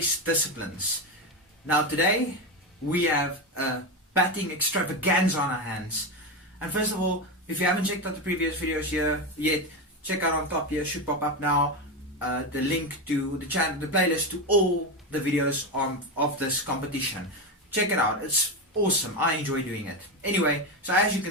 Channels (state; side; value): normal; both; correlation 0.15